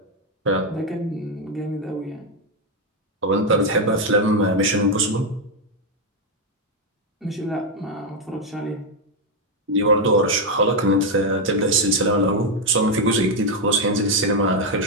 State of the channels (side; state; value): both; normal; correlation 0.04